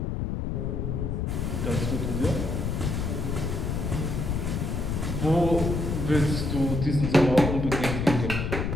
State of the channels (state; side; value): noise; left; rumble, 1 dB below the sound